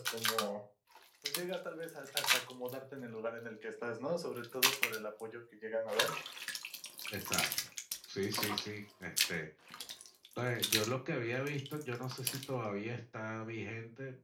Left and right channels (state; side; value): identical; both; correlation 1.00